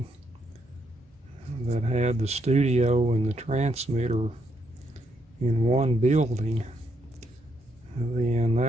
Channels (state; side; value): normal; both; correlation 0.76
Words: that had the studio and the transmitter in one building, then